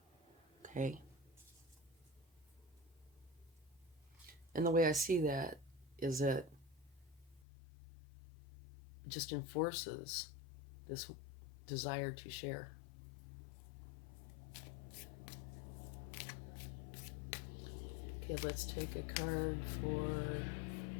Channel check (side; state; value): right; drops out; at 7.4 s